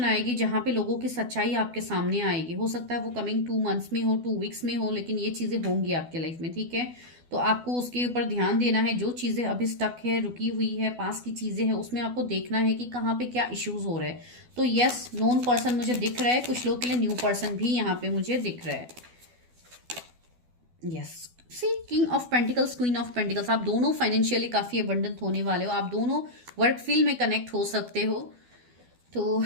आएगी, जहां पे लोगों की सच्चाई आपके सामने आएगी। हो सकता है वो कमिंग 2 मंथ्स में हो, 2 वीक्स में हो, लेकिन ये चीजें होंगी आपके लाइफ में, ठीक है। तो आपको उसके ऊपर ध्यान देना है। जो चीजें अभी स्टक है, रुकी हुई है, पास की चीजें हैं, उसमें आपको देखना है कि कहाँ पे क्या इश्यूज हो रहे हैं। तो यस, नोन पर्सन मुझे दिख रहा है, कुछ लोग के लिए न्यू पर्सन भी यहाँ पे मुझे दिख रहा है। Yes, see king of pentacles, queen of pentacles, आप दोनों फाइनेंशियली काफी अबंडेंट होने वाले हो, आप दोनों वर्क फील्ड में कनेक्ट हो सकते हो, तो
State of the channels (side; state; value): left; late; 12 ms